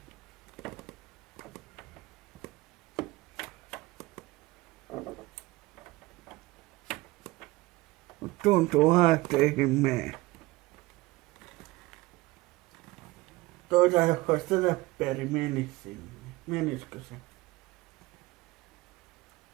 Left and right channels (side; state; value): left; quieter; 20.0 dB